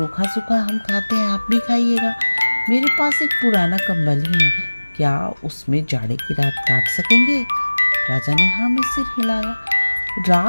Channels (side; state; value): both; inverted; correlation -1.00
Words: सूखा हम खाते हैं आप भी खाइएगा। मेरे पास एक पुराना कंबल ही है, क्या उसमें जाड़े की रात काट सकेंगे। राजा ने हाँ में सिर हिलाया।